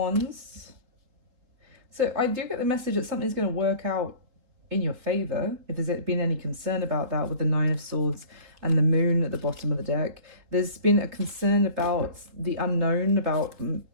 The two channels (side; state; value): left; late; 3.8 ms